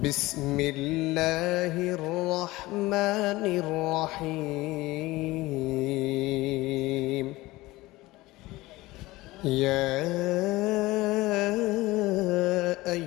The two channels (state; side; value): quieter; right; 19.4 dB